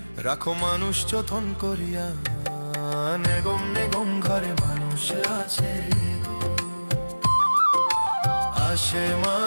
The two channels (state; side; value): inverted; both; correlation -1.00